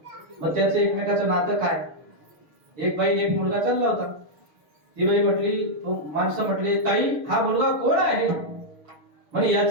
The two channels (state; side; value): late; left; 6.6 ms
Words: मग त्याचं एकमेकाचं नातं काय? एक बाई एक मुलगा चालला होता. ती बाई म्हटली, तो माणसं म्हटले, ताई हा मुलगा कोण आहे? म्हणजे